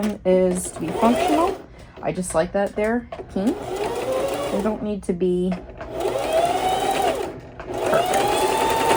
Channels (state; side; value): identical; both; correlation 1.00